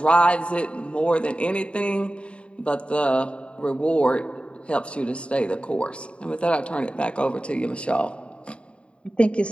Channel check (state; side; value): late; right; 0.058 ms